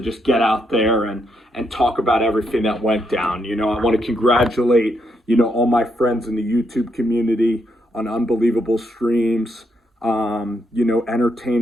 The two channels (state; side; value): normal; both; correlation 0.78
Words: get out there and talk about everything that went down. I want to congratulate all my friends in the YouTube community on unbelievable streams.